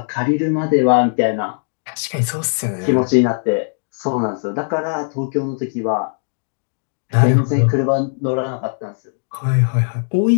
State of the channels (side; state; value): right; silent; digital silence